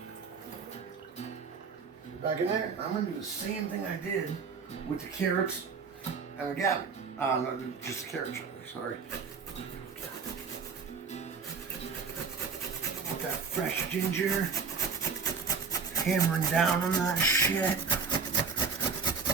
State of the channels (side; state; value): left; quieter; 5.5 dB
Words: Back in there, I'm gonna do the same thing I did with the carrots and the cabbage. No, just the carrots, sorry. With that fresh ginger, hammering down on that shit.